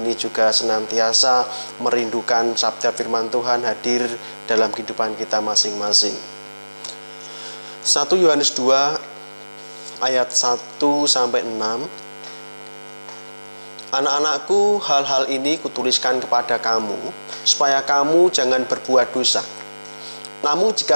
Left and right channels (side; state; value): both; inverted; correlation -1.00